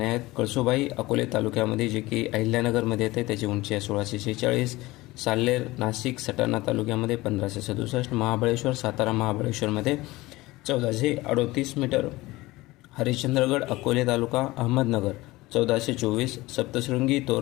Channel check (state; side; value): quieter; right; 19.7 dB